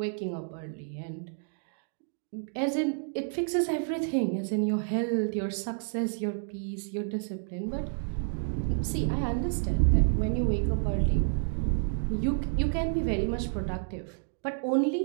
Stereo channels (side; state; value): left; silent; digital silence